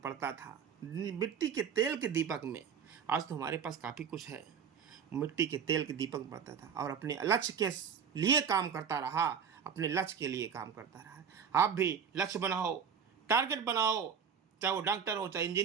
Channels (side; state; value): left; quieter; 7.2 dB